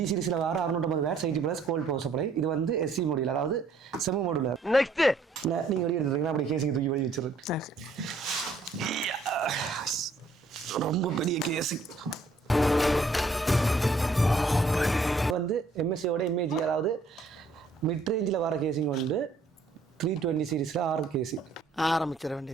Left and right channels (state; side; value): quieter; left; 3.3 dB